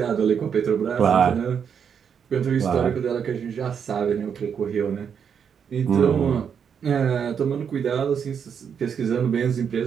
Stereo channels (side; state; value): left; quieter; 7.3 dB